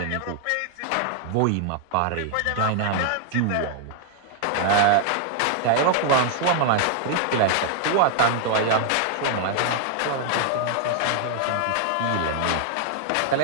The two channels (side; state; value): both; different; correlation 0.00